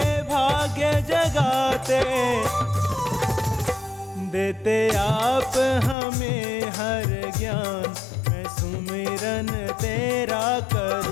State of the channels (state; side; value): drops out; right; at 6.0 s